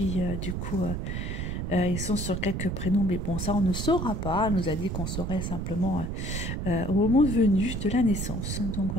du coup... ils sont sur quelques prénoms, mais bon, ça on ne saura pas. Elle nous a dit qu'on saurait simplement au moment venu de la naissance. Donc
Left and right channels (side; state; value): right; noise; rumble, 3 dB below the sound